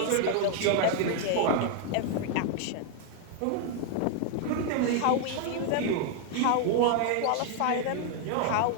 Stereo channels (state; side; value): different; both; correlation 0.00